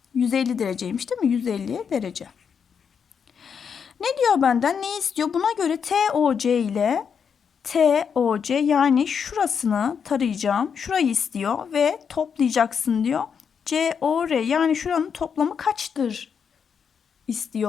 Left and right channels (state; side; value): quieter; right; 6.8 dB